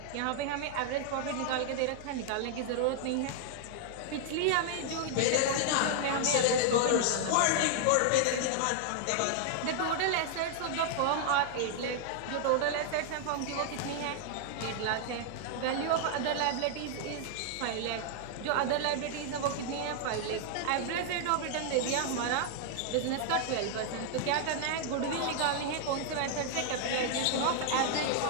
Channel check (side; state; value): both; different; correlation 0.00